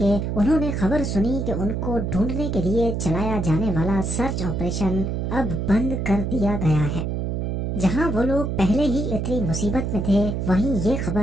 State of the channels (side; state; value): right; noise; hum, 1 dB below the sound